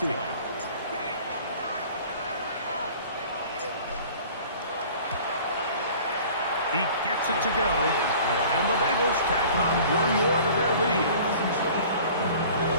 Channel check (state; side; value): inverted; both; correlation -0.46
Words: He gets it to go, and the Bengals tack on one more to their lead.